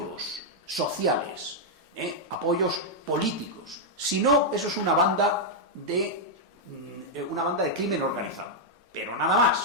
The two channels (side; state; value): both; normal; correlation -0.03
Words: sociales, apoyos políticos. Si no, eso es una banda de crimen organizado. Pero nada